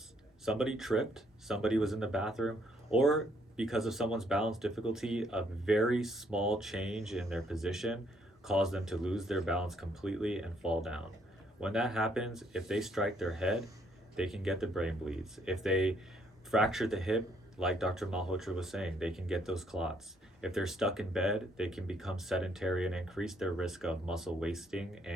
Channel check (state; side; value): normal; both; correlation 0.69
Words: Somebody tripped, somebody was in the bathroom, or because of someone's balance difficulty, a very small change in their position caused them to lose their balance completely and fall down. When that happens, if they strike their head, they can get the brain bleeds. If they fracture the hip, like Dr. Malhotra was saying, they can get those clots. If they're stuck in bed, they can become sedentary and increase their risk of muscle wasting